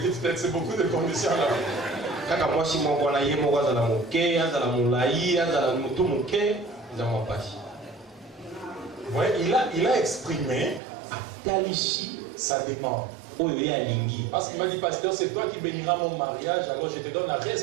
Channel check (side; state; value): left; drops out; at 10.8 s